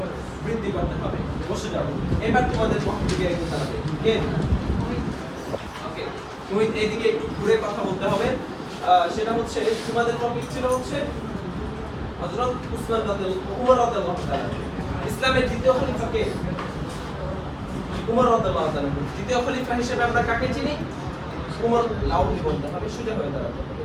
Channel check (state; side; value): identical; both; correlation 1.00